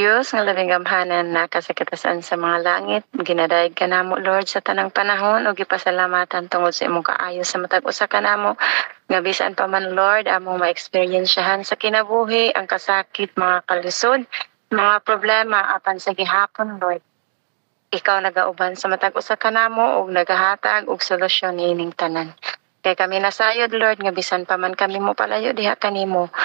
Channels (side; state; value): left; silent; 55 dB below the other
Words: nga labing gamhanan na kasakitasan sa mga langit, ginadayag ka namo, Lord, sa tanang panahon, o gipasalamatan tungod sa imong kaayo sa matag usa ka namo, nga bisan pa man, Lord, among ma-experiensyahan sa kinabuhi, ang kasakit, mga kalisod, mga problema, apan sa gihapon, Lord. Ikaw nagauban sa matag usa ka namo ug nagahatag og solusyon niining tanan. Kay kami nasayod, Lord, nga bisan pa man kami mo palayo diha kanimo,